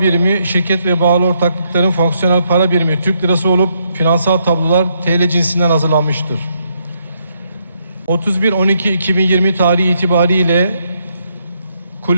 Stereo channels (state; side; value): inverted; both; correlation -0.75